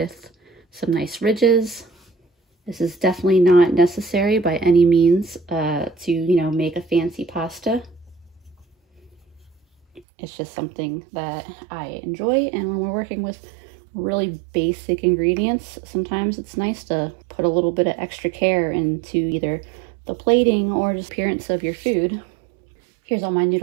some nice ridges. This is definitely not necessary by any means to, make a fancy pasta. It's just something that I enjoy, and when we're working with really basic ingredients, sometimes it's nice to put a little bit of extra care into either the plating or just appearance of your food. Here's all my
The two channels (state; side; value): drops out; left; at 10.0 s